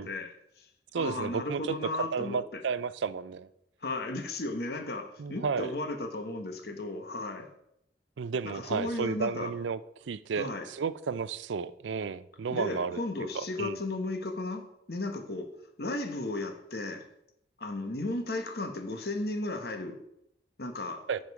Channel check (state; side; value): normal; both; correlation 0.06